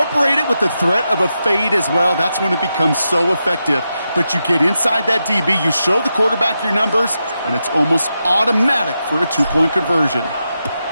it with the threat of a fade as well, that's when it becomes so effective. But you get inside that DB, you show the quarterback your numbers, and it's almost automatic for a 2-point conversion.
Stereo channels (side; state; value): both; inverted; correlation -0.87